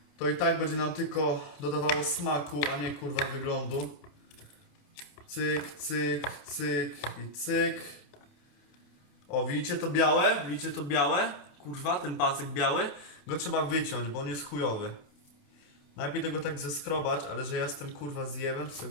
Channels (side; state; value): right; late; 28 ms